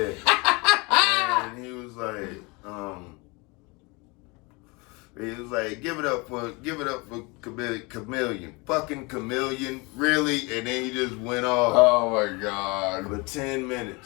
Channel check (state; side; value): quieter; right; 27.3 dB